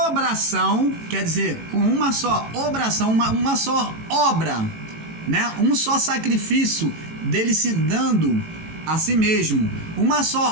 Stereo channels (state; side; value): late; left; 18 ms